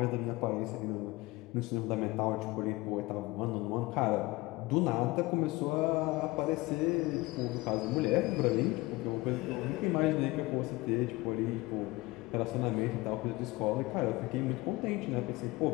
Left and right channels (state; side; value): quieter; right; 21.1 dB